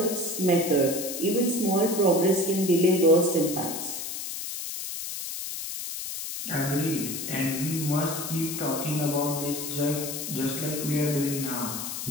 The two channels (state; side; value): noise; left; hiss, 6 dB below the sound